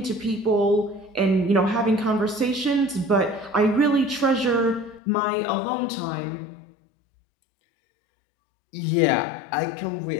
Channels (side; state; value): right; drops out; at 5.0 s